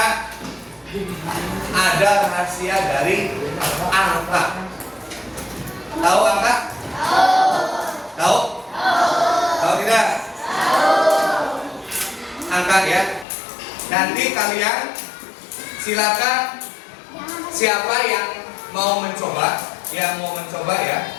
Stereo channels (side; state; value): right; drops out; at 13.2 s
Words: ada rahasia dari angka. Tahu angka? Tahu? Tahu tidak? Angka ya. Nanti kalian silakan siapa yang mau mencoba, ya,